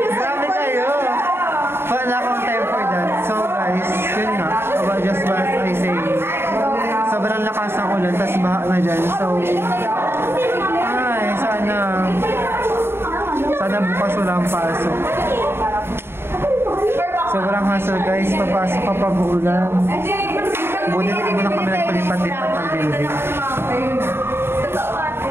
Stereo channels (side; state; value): left; late; 0.11 ms